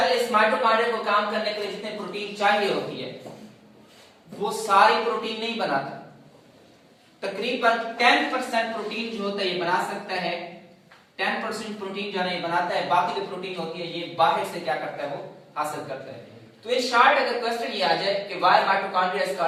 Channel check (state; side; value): identical; both; correlation 1.00